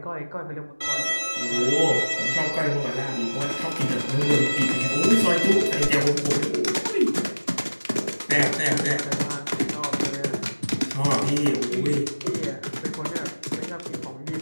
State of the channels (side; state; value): both; inverted; correlation -1.00